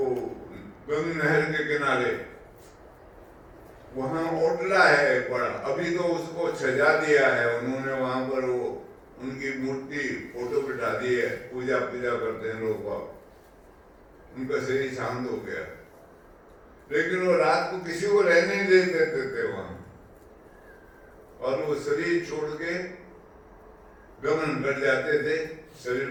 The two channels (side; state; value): both; identical; correlation 1.00